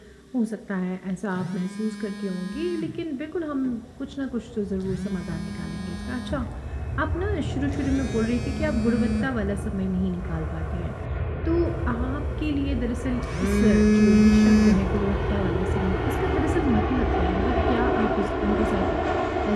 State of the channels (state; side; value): identical; both; correlation 1.00